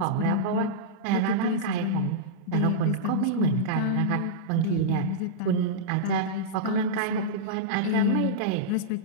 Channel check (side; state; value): both; different; correlation -0.04